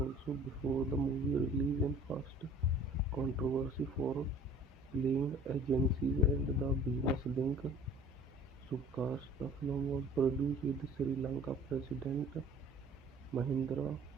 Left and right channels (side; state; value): both; normal; correlation 0.49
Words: before the movie release and first controversy for playing agencies and the business link. Subcast. The film was produced with Sri Lanka President Mahindra